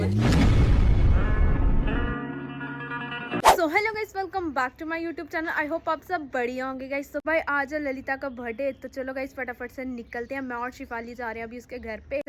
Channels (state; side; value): identical; both; correlation 1.00